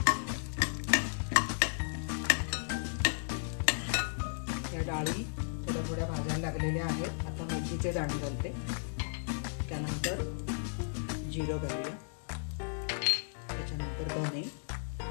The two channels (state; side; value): silent; right; digital silence